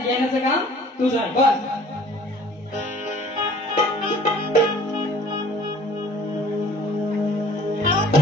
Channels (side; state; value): both; normal; correlation 0.51